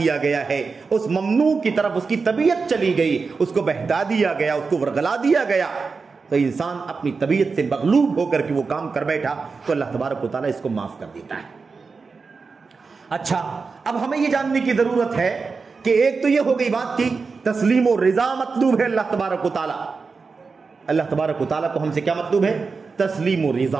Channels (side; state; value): left; quieter; 4.7 dB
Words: گیا ہے، اس ممنوع کی طرف اس کی طبیعت چلی گئی، اس کو بہتا دیا گیا، اس کو ورغلا دیا گیا، تو انسان اپنی طبیعت سے مغلوب ہو کر کے وہ کام کر بیٹھا، تو اللہ تبارک و تعالیٰ اس کو معاف کر دیتا ہے۔ اچھا، اب ہمیں یہ جاننے کی ضرورت ہے کہ ایک تو یہ ہو گئی بات کی تسلیم و رضا مطلوب ہے اللہ تبارک و تعالیٰ، اللہ تبارک و تعالیٰ کو ہم سے کیا مطلوب ہے؟ تسلیم و